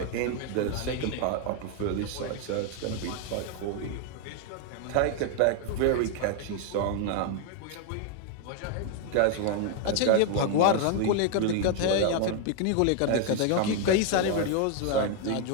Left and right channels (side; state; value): both; different; correlation 0.01